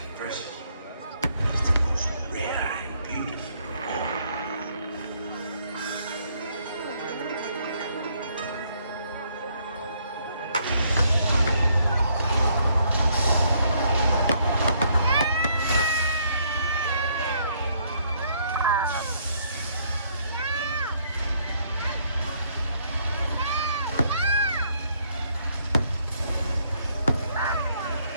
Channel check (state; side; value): inverted; both; correlation -0.69